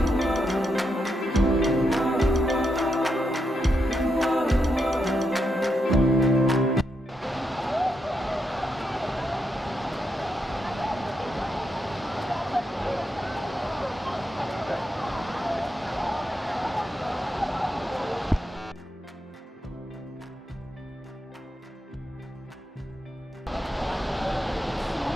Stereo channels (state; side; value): normal; both; correlation 0.83